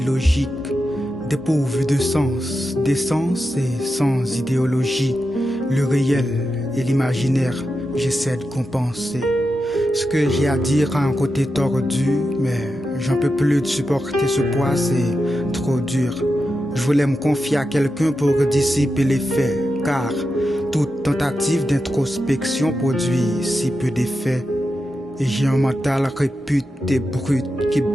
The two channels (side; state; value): both; normal; correlation 0.89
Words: dépourvu de sens, d'essence et sans idéologie. Le réel et l'imaginaire, j'essaie de compenser. Ce que j'ai à dire a un côté tordu, mais j'en peux plus de supporter ce poids, c'est trop dur. Je voulais me confier à quelqu'un pour dissiper les faits, car toute tentative d'introspection produit si peu d'effets. Et j'ai un mental réputé brut, qui